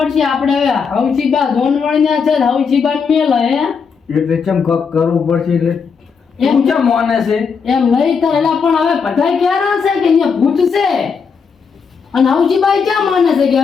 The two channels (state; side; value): quieter; right; 5.8 dB